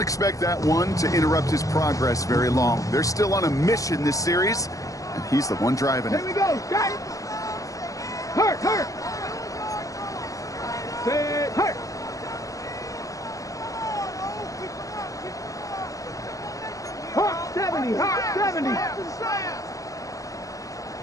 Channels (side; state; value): right; late; 0.16 ms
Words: that one to interrupt his progress very long. They're still on a mission this series, and he's the one driving it. Here we go, guys. Hurt. Set, hurt. Hawk 70.